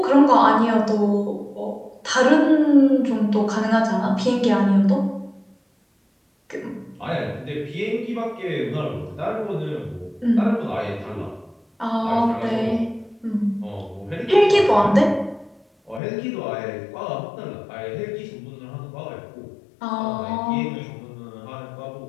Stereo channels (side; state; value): right; drops out; at 16.0 s